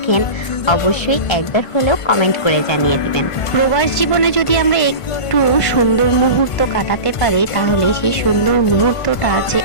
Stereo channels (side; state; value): right; late; 1.5 ms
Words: অবশ্যই একবার হলেও কমেন্ট করে জানিয়ে দিবেন। প্রবাস জীবনে যদি আমরা একটু সুন্দর মুহূর্ত কাটাতে পারি তাহলে সেই সুন্দর মুহূর্তটা যে